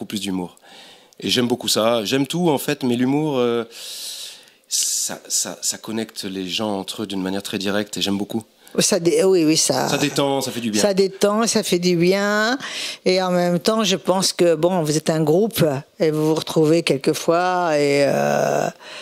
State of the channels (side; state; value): both; identical; correlation 1.00